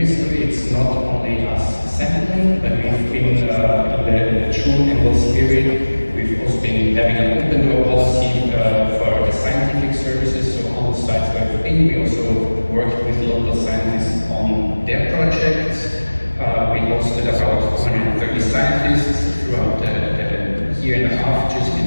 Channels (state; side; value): inverted; both; correlation -1.00